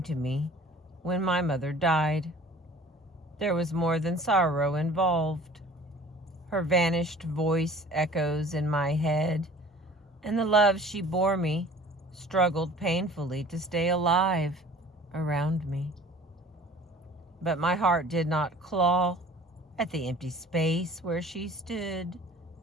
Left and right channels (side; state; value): both; normal; correlation 0.47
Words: to me when my mother died. There was more than sorrow involved. Her vanished voice echoes in my head, and the love she bore me struggled painfully to stay alive around me. But my heart did not claw at the empty space where she stood